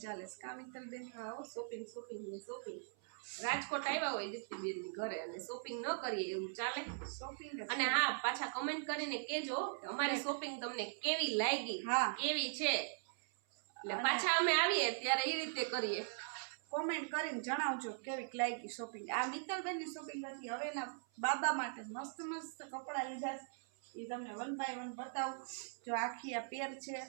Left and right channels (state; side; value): silent; left; 51 dB below the other